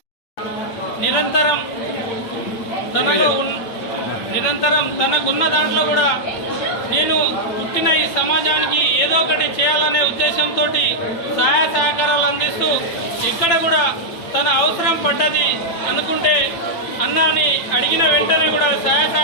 నిరంతరం తనకున్న దాంట్లో కూడా నేను పుట్టిన ఈ సమాజానికి ఏదో ఒకటి చేయాలనే ఉద్దేశంతో సహాయ సహకారాలు అందిస్తూ ఎక్కడ కూడా తన అవసరం పడ్డది అనుకుంటే అన్నాని అడిగిన వెంటనే కూడా సహాయ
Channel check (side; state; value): right; late; 8.9 ms